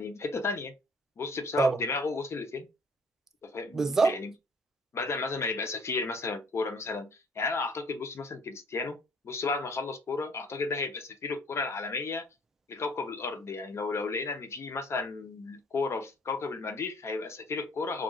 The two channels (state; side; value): normal; both; correlation 0.56